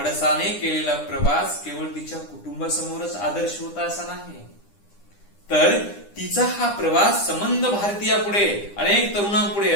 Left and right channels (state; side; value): late; right; 9.9 ms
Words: केलेला प्रवास केवळ तिच्या कुटुंबासमोरच आदर्श होता असा नाही, तर तिचा हा प्रवास संबंध भारतीयापुढे, अनेक तरुणांपुढे,